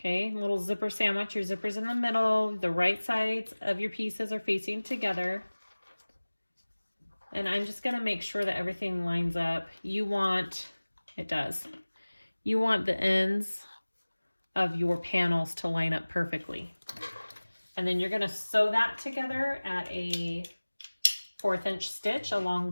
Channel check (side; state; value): both; inverted; correlation -1.00